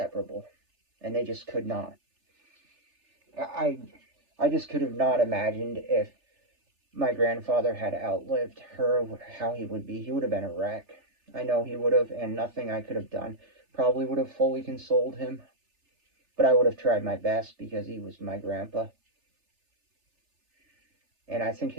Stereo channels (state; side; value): late; left; 3.4 ms